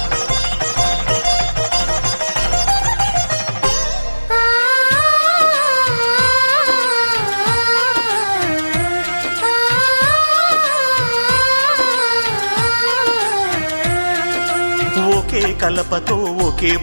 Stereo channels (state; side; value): inverted; both; correlation -1.00